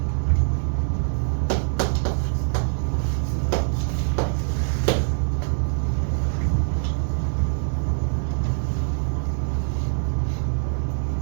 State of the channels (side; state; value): left; silent; digital silence